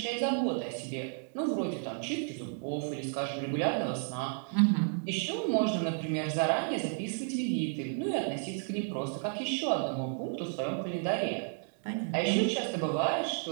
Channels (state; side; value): silent; left; 56 dB below the other